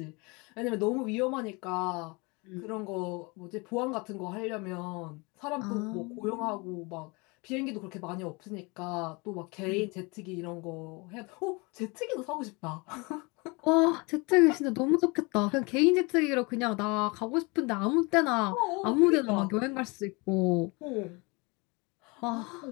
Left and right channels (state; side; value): quieter; right; 27.8 dB